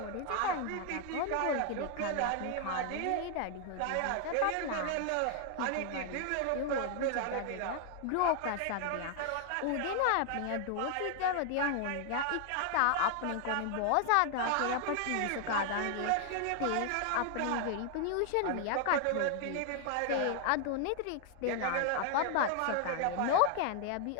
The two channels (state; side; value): different; both; correlation 0.00